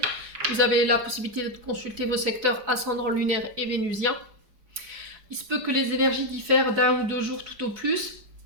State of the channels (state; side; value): late; left; 4.7 ms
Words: Vous avez la possibilité de consulter vos secteurs ascendant lunaire et vénusien. Il se peut que les énergies diffèrent d'un ou deux jours tout au plus.